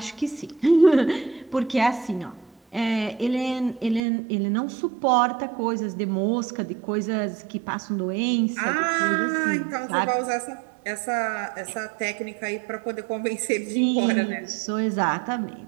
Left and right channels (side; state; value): left; drops out; at 4.0 s